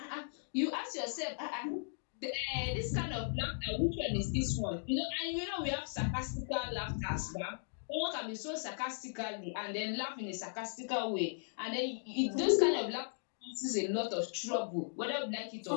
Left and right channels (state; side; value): silent; right; digital silence